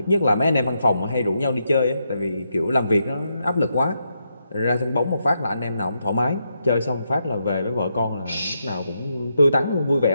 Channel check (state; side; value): inverted; both; correlation -0.82